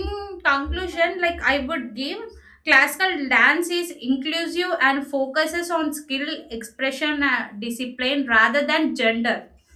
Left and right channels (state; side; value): identical; both; correlation 1.00